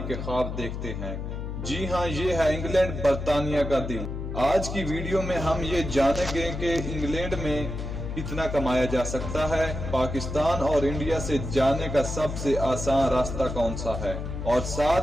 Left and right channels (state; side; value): noise; left; hum, 5 dB below the sound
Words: के ख्वाब देखते हैं। जी हाँ, ये है इंग्लैंड, बर्तानिया का दिल। आज की वीडियो में हम ये जानेंगे कि इंग्लैंड में कितना कमाया जा सकता है, पाकिस्तान और इंडिया से जाने का सबसे आसान रास्ता कौन सा है, और